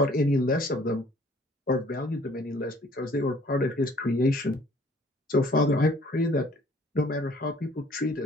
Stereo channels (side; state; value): both; normal; correlation 0.57